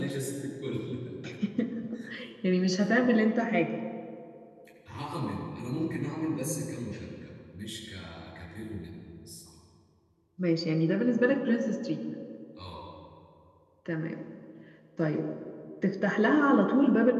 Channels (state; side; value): identical; both; correlation 1.00